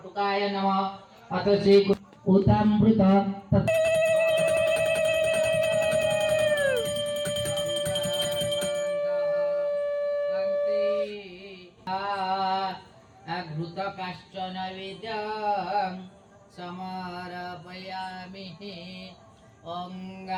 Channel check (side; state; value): both; identical; correlation 1.00